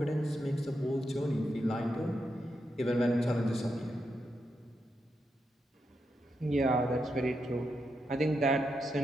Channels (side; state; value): both; normal; correlation 0.84